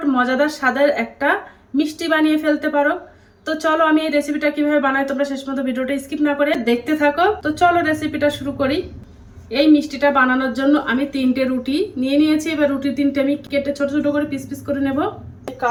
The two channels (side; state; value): both; identical; correlation 1.00